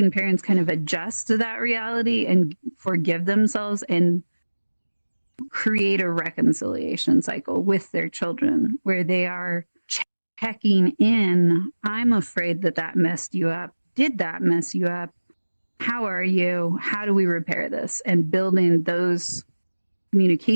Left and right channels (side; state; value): both; inverted; correlation -1.00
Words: parents kind of adjust to that reality and forgive themselves and create a reconciliation cycle with their children where they are checking in. I'm afraid that messed you up. Did that mess you up? How are you? How do we repair this? And building those